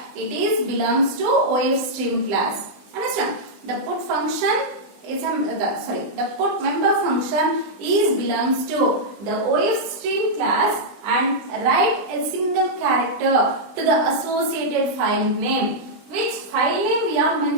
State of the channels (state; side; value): late; left; 20 ms